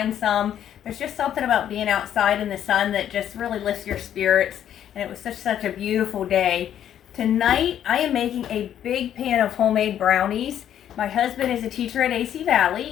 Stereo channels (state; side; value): quieter; right; 10.3 dB